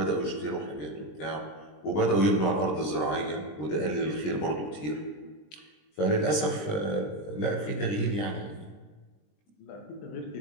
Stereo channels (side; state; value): right; late; 20 ms